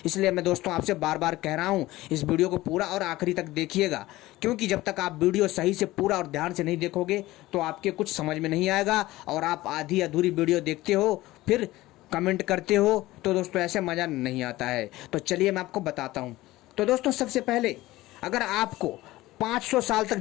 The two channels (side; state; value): right; quieter; 17.7 dB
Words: इसलिए मैं दोस्तों आपसे बार बार कह रहा हूँ इस वीडियो को पूरा और आखिरी तक देखिएगा, क्योंकि जब तक आप वीडियो सही से पूरा और ध्यान से नहीं देखोगे तो आपके कुछ समझ में नहीं आएगा, और आप आधी अधूरी वीडियो देखते हो फिर कमेंट करते हो, तो दोस्तों ऐसे मज़ा नहीं आता है। तो चलिए मैं आपको बताता हूँ। तो दोस्तों सबसे पहले अगर आपको 500 साल तक